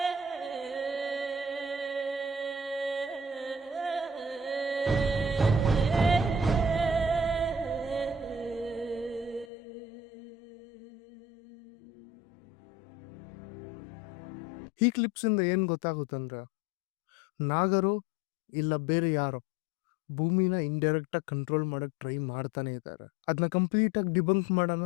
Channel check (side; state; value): right; drops out; at 9.5 s